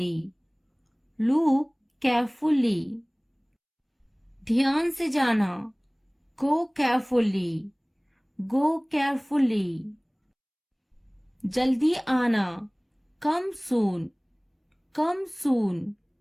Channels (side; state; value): both; identical; correlation 1.00